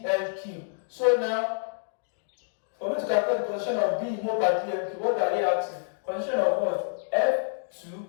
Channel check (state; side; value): silent; right; digital silence